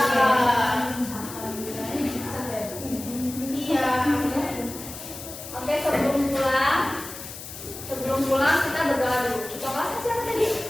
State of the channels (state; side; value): noise; left; hiss, 12 dB below the sound